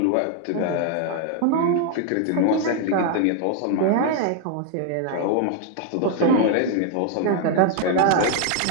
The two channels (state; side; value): different; both; correlation 0.00